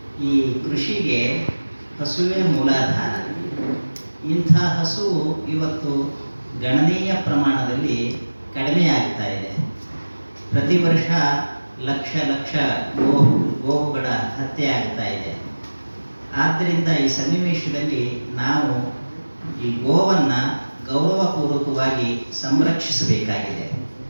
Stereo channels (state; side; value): inverted; both; correlation -1.00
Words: ಈ ಕೃಷಿಗೆ ಹಸುವೇ ಮೂಲಾಧಾರ. ಇಂಥ ಹಸು ಇವತ್ತು ಗಣನೀಯ ಪ್ರಮಾಣದಲ್ಲಿ ಕಡಿಮೆಯಾಗ್ತಾ ಇದೆ. ಪ್ರತಿ ವರ್ಷ ಲಕ್ಷ ಲಕ್ಷ ಗೋವುಗಳ ಹತ್ಯೆ ಆಗ್ತಾ ಇದೆ. ಆದ್ದರಿಂದ ಈ ಸನ್ನಿವೇಶದಲ್ಲಿ ನಾವು ಈ ಗೋವನ್ನು ಗೌರವಪೂರ್ವಕವಾಗಿ ಸಂರಕ್ಷಿಸಬೇಕಾಗಿದೆ.